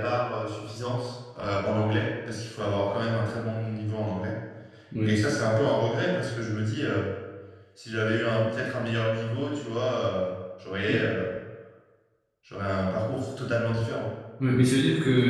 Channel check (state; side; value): identical; both; correlation 1.00